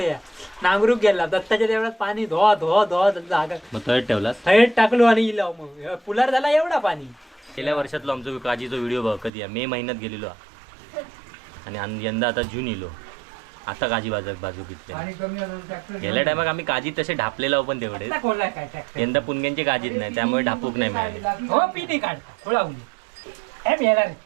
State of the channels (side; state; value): left; drops out; at 9.3 s